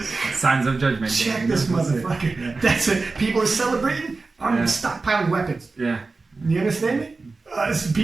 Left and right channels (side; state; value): left; quieter; 3.8 dB